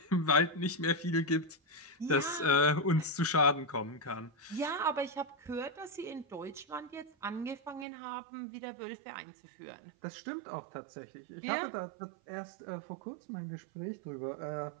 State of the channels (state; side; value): drops out; left; at 7.9 s